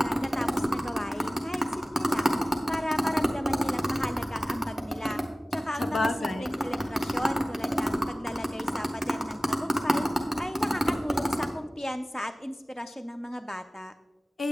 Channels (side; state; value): both; normal; correlation 0.97